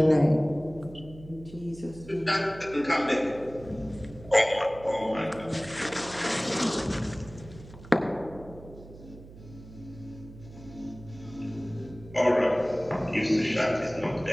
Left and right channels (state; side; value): noise; right; hum, 18 dB below the sound